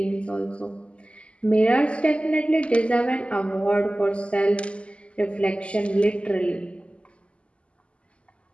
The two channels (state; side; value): late; right; 0.057 ms